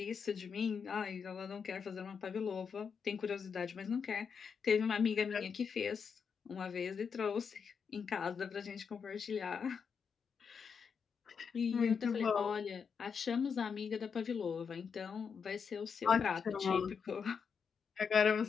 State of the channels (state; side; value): quieter; right; 6.3 dB